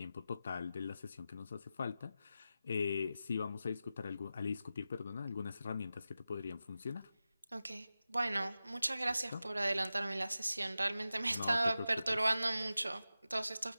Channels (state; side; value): inverted; both; correlation -0.93